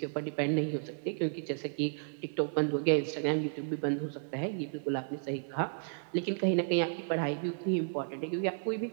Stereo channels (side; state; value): left; silent; 56 dB below the other